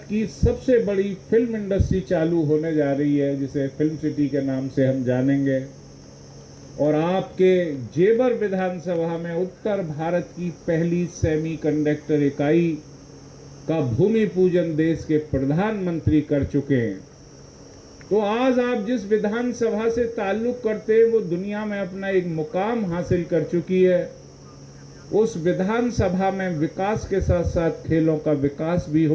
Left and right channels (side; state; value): both; identical; correlation 1.00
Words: की सबसे बड़ी फिल्म इंडस्ट्री चालू होने जा रही है, जिसे फिल्म सिटी के नाम से हम जानेंगे। और आपके जेवर विधानसभा में उत्तर भारत की पहली सेमीकंडक्टर इकाई का भूमि पूजन देश के प्रधानमंत्री कर चुके हैं। तो आज आप जिस विधानसभा से ताल्लुक करते हैं, वो दुनिया में अपना एक मुकाम हासिल कर चुकी है। उस विधानसभा में विकास के साथ साथ खेलों का विकास भी